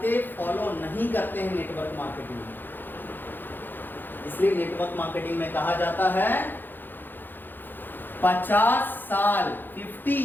फॉलो नहीं करते हैं नेटवर्क मार्केटिंग में। इसलिए नेटवर्क मार्केटिंग में कहा जाता है 50 साल 50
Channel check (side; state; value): right; late; 0.093 ms